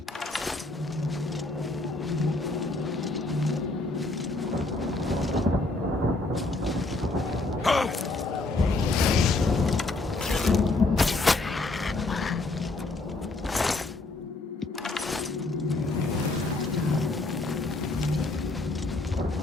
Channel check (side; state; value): right; quieter; 3.2 dB